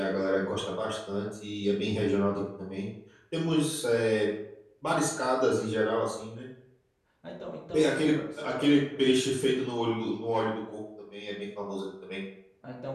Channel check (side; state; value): both; identical; correlation 1.00